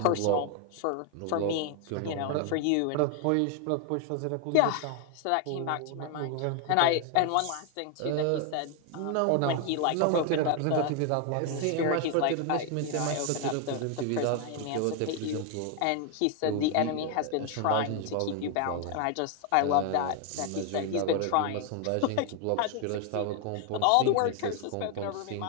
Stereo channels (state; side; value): different; both; correlation 0.00